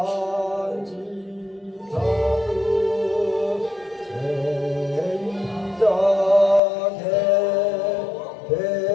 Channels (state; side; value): drops out; right; at 6.6 s